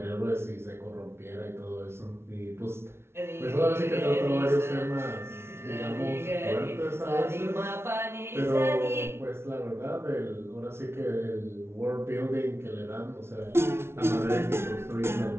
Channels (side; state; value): left; late; 0.12 ms